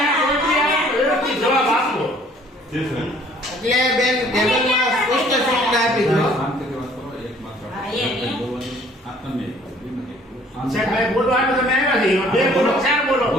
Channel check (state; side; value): normal; both; correlation 0.57